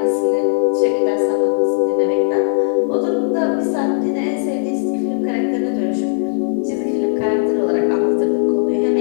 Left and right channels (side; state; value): right; silent; digital silence